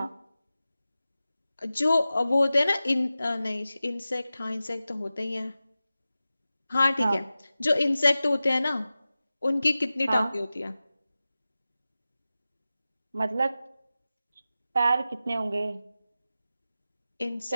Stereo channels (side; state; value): both; inverted; correlation -0.95